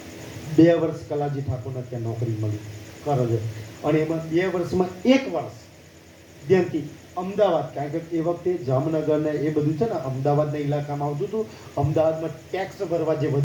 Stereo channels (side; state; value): both; identical; correlation 1.00